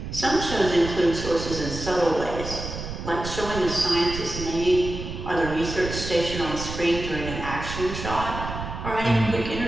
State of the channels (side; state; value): right; noise; rumble, 7 dB below the sound